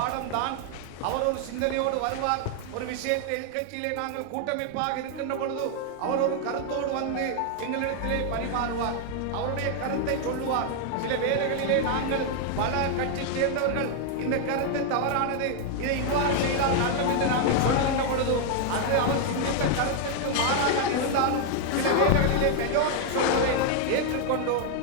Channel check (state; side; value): different; both; correlation 0.00